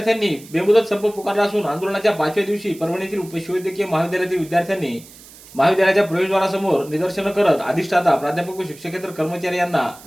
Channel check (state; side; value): noise; right; hiss, 21 dB below the sound